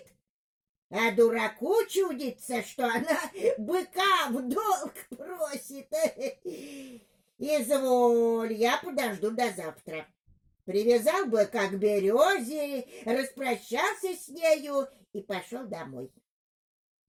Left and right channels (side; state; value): both; identical; correlation 1.00